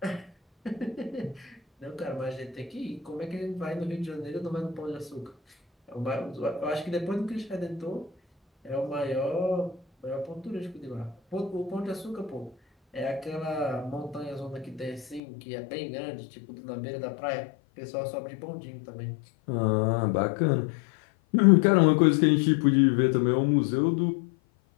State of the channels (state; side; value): drops out; right; at 15.2 s